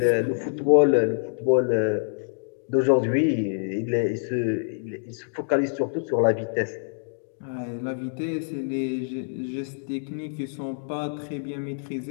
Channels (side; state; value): right; silent; digital silence